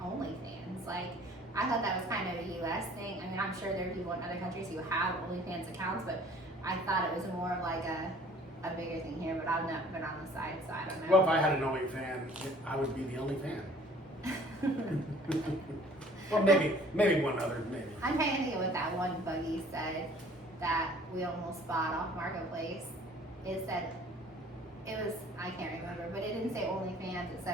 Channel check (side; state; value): both; normal; correlation 0.53